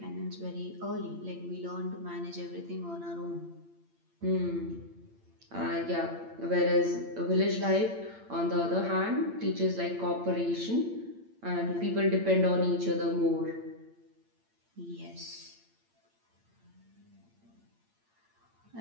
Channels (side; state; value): left; late; 8.8 ms